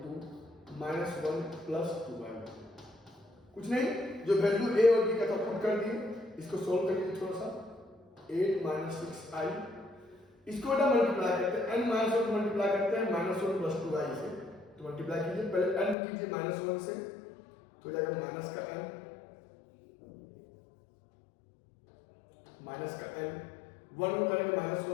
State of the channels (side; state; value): right; drops out; at 16.0 s